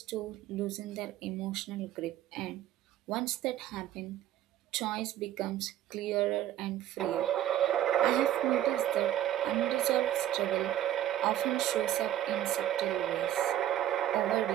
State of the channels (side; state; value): left; quieter; 12.3 dB